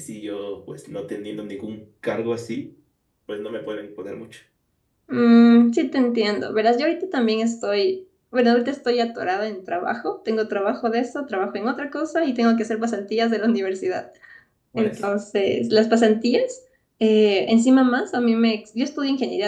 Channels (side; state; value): both; identical; correlation 1.00